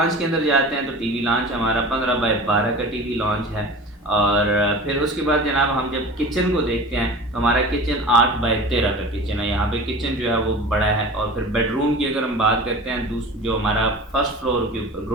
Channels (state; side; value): normal; both; correlation 0.37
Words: के अंदर जाते हैं तो टीवी लॉन्च हमारा 15/12 का टीवी लॉन्च है। और फिर उसके बाद जनाब हम जब किचन को देखते हैं तो हमारा किचन 8/13 का किचन है। यहाँ पे किचन जो है वो बड़ा है। और फिर बेडरूम की अगर हम बात करते हैं जो हमारा फर्स्ट फ्लोर के ऊपर